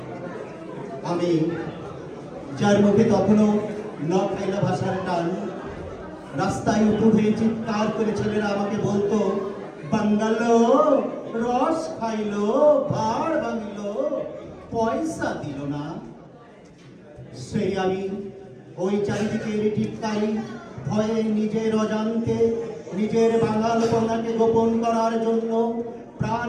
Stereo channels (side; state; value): both; identical; correlation 1.00